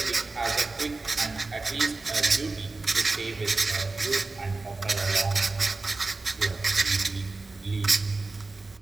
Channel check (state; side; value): quieter; left; 3.6 dB